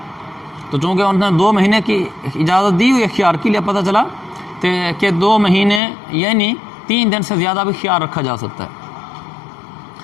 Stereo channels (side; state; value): right; drops out; at 5.8 s